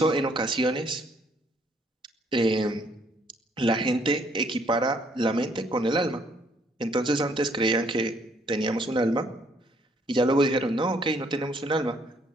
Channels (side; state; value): both; normal; correlation 0.66